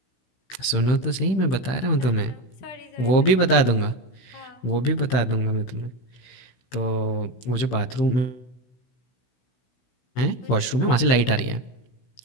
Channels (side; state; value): right; late; 16 ms